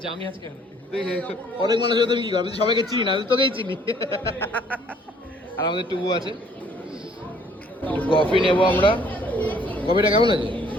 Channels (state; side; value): normal; both; correlation 0.60